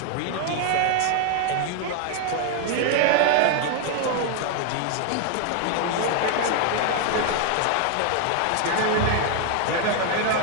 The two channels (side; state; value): both; different; correlation 0.00